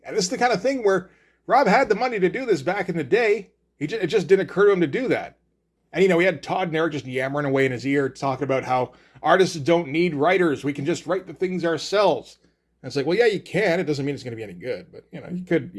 And this is the kind of thing where Rob had the money to do this back in the day. It just didn't occur to him to do that. And, he had Todd and Eric just yammering away in his ear, talking about how artists don't need writers. We can just write the things ourselves. And it's like, well, yeah, you can. It doesn't mean it's going to be any good. But,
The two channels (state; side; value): identical; both; correlation 1.00